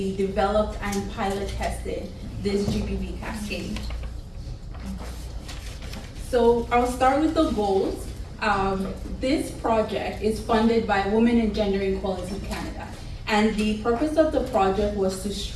developed and pilot tested this GBV cascade. So I'll start with the goals. This project is funded by Women and Gender Equality Canada, and the purpose of the project was to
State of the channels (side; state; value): both; identical; correlation 1.00